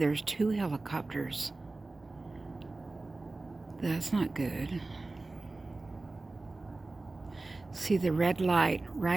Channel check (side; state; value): left; quieter; 3.2 dB